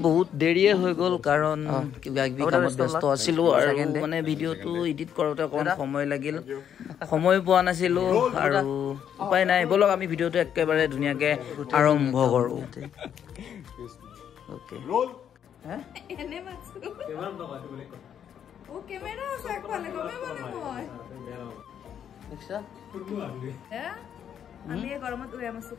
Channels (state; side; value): quieter; right; 9.0 dB